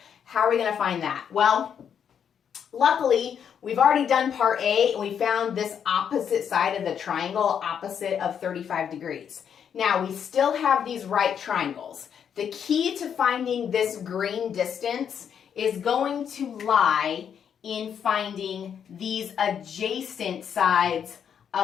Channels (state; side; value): quieter; right; 8.0 dB